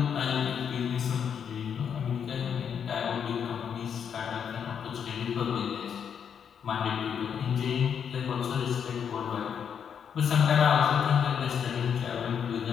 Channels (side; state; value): right; quieter; 7.7 dB